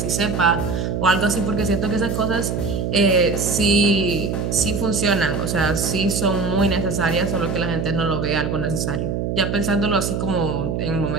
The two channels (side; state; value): right; noise; hum, 1 dB below the sound